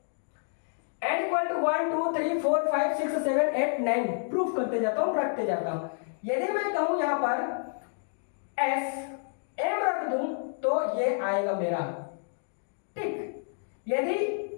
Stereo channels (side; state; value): right; silent; digital silence